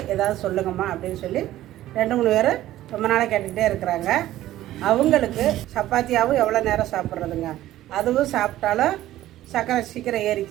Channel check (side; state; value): left; quieter; 14.3 dB